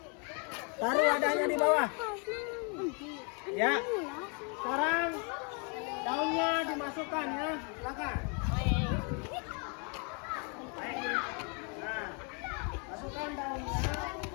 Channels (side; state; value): right; quieter; 36.5 dB